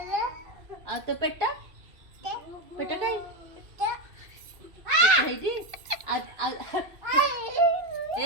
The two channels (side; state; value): left; late; 2.7 ms